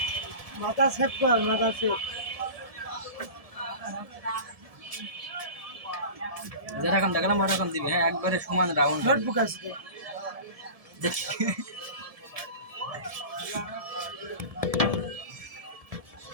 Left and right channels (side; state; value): left; late; 1.7 ms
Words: মাথা সেভ কর মাথা সেভ যেরকম দেখলাম ওরকম দিবে হ্যাঁ একবারে সমান রাউন্ড নোটবুক আছে দেখি